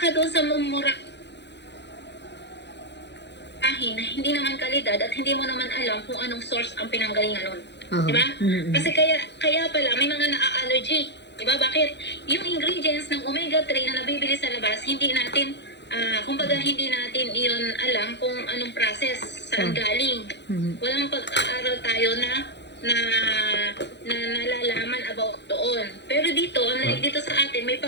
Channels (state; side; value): late; right; 0.50 ms